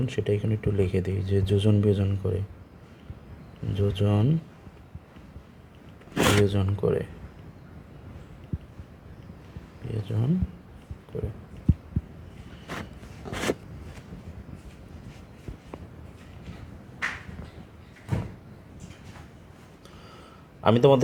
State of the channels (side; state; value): both; identical; correlation 1.00